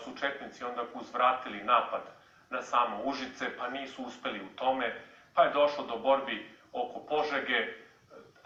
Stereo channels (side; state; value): both; identical; correlation 1.00